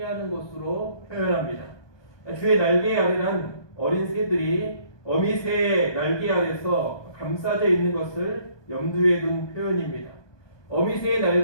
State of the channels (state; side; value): late; right; 1.2 ms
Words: 것으로 표현합니다. 주의 날개 아래란 어린 새들이 어미새의 날개 아래서 감싸져 있는 것을 염두에 둔 표현입니다. 어미새의